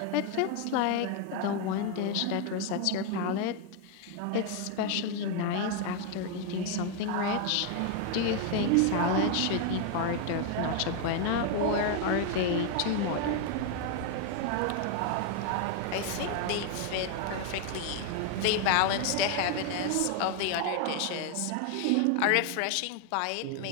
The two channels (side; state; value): both; different; correlation 0.01